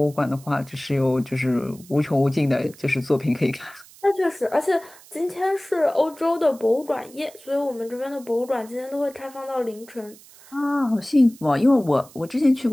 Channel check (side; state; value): right; noise; hiss, 23 dB below the sound